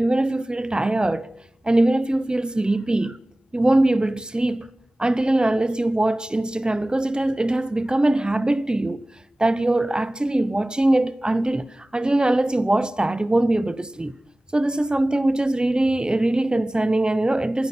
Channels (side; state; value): both; normal; correlation 0.98